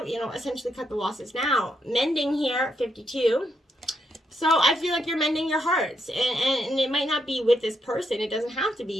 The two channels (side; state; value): both; normal; correlation 0.79